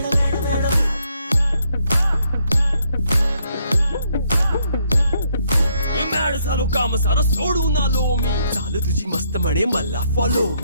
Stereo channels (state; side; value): inverted; both; correlation -0.72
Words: झालो काम सारं सोडून आलो मी चाल तुझी मस्त म्हणे मला फॉलो